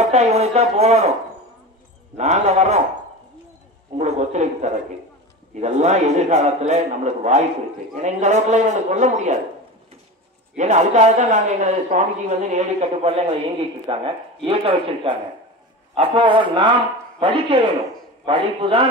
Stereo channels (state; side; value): normal; both; correlation 0.29